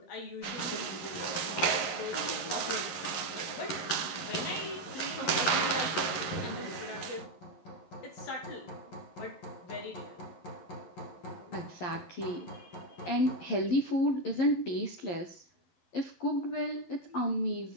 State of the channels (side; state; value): right; late; 11 ms